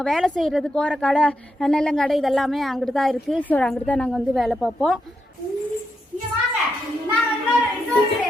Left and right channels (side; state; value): both; normal; correlation 0.83